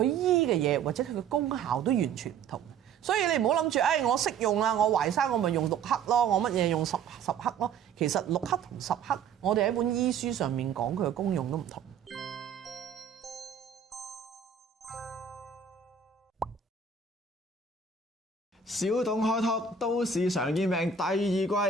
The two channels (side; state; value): left; quieter; 6.3 dB